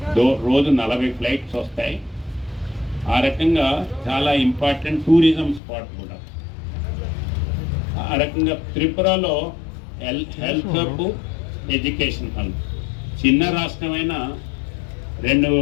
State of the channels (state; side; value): drops out; right; at 5.6 s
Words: రోజు 40 ఫ్లైట్స్ వస్తాయి. ఆ రకంగా చాలా ఇంపార్టెంట్ టూరిజం స్పాట్ కూడా. ఆ రకంగా త్రిపురలో హెల్త్ హబ్, ఎడ్యుకేషన్ హబ్. చిన్న రాష్ట్రమైన